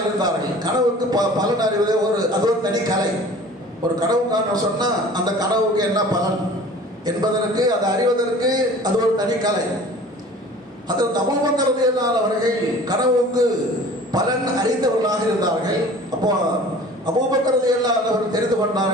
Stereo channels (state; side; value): normal; both; correlation 0.45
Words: இருந்தார்கள். கனவுக்கு பலன் அறிவது அது ஒரு தனி கலை. ஒரு கனவு காண சொன்னா அந்த கனவுக்கு என்ன பலன் என்பதற்கு, அதை அறிவதற்கு அது ஒரு தனி கலை. ஹஜ்ரத் அபூபக்கர் ரலியல்லாஹு அவர்கள் கனவுக்கு பலன் அறிந்தவர்களாக இருந்தார்கள். அப்போ அபூபக்கர் ரலியல்லாஹு அவர்கள் தெரிந்து